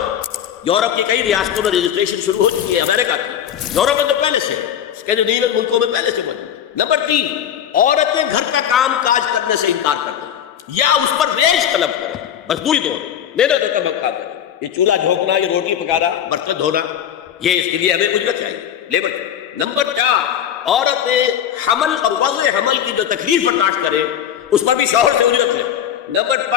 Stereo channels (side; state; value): right; quieter; 9.7 dB